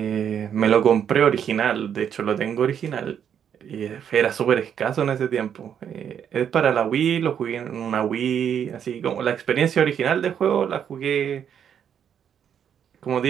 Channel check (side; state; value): left; quieter; 8.5 dB